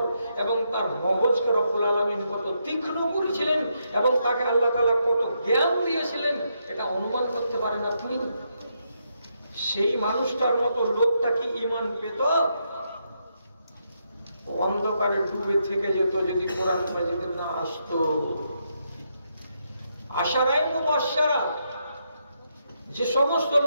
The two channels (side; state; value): both; inverted; correlation -0.80